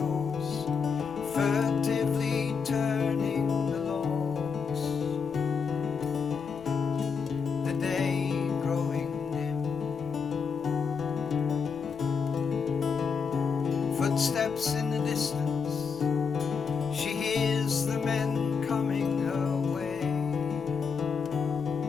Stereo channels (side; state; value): right; quieter; 5.7 dB